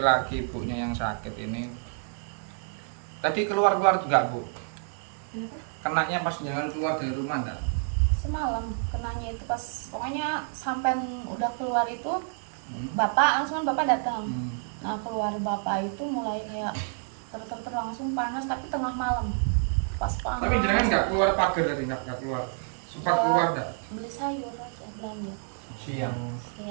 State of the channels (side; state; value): left; silent; 59 dB below the other